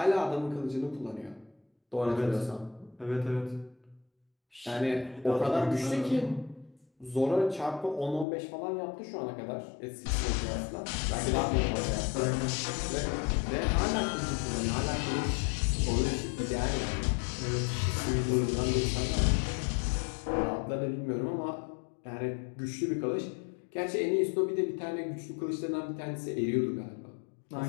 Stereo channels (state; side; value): drops out; right; at 8.2 s